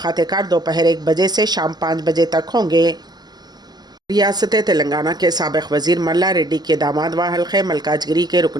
दोपहर 1 बजे से शाम 5 बजे तक होंगे। रियासत तेलंगाना के साबिक़ वज़ीर मल्ला रेड्डी के दामाद व हल्क़े मल्काजगिरी के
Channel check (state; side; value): late; left; 0.20 ms